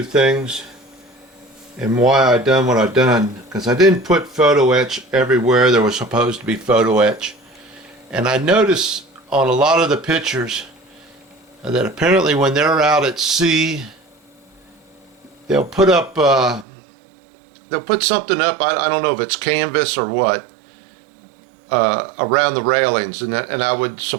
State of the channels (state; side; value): drops out; left; at 16.7 s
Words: things and why I done what I done. Because I didn't put photo etch everywhere there was supposed to be photo etch. And I noticed on a lot of the pictures that apparently when they're out at sea, they'll put up, they'll put something up. I don't know if it's canvas or what. Around the railings, and I would